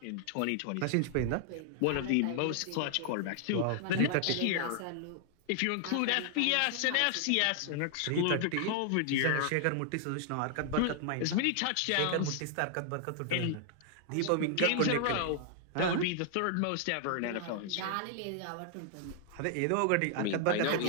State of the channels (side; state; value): both; different; correlation 0.00